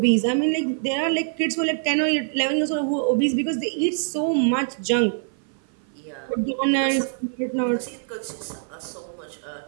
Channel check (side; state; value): left; silent; 56 dB below the other